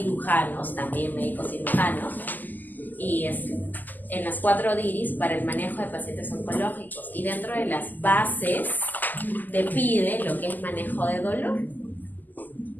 también médicos cirujanos, y en las 4 DIRIs para el manejo de pacientes oncológicos. Y dentro de las bases te pide lo que es manejo de dolor.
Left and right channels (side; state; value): right; late; 0.085 ms